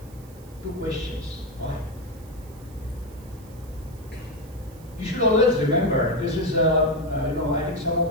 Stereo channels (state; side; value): noise; right; hiss, 25 dB below the sound